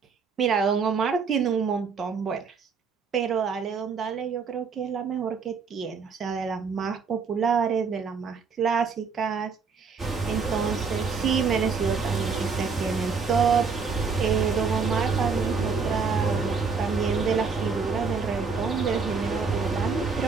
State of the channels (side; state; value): left; quieter; 5.3 dB